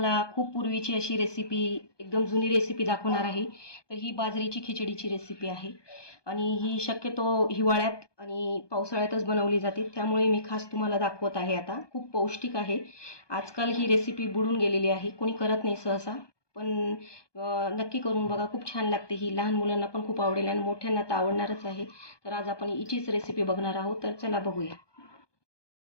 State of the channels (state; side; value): late; right; 1.2 ms